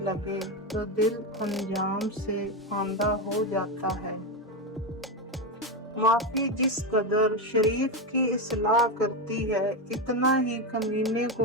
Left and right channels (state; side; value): normal; both; correlation 0.11